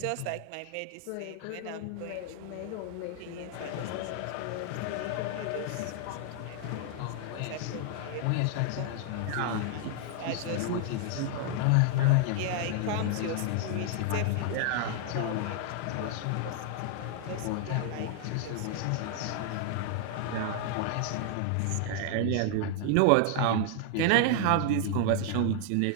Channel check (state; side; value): different; both; correlation 0.00